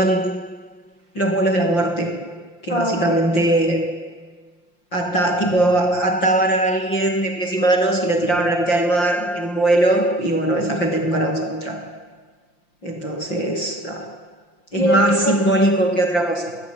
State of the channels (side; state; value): right; late; 5.7 ms